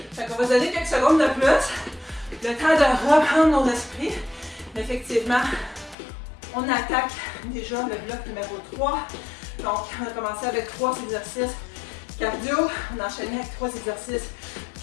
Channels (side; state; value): right; drops out; at 6.0 s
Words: Fait qu'on va se donner quelques secondes de plus. Le temps de reprendre nos esprits. Mais effectivement, on attaque déjà le bloc numéro 3. Donc, on a commencé avec 3 exercices cardio. On a enchaîné avec 3 exercices